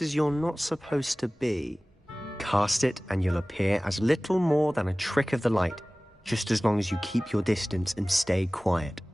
you're not supposed to be. Cast it and you'll appear as little more than a trick of the light, just as long as you keep your distance and stay quiet.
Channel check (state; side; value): normal; both; correlation 0.98